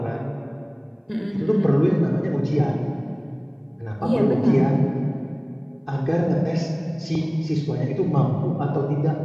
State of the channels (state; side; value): identical; both; correlation 1.00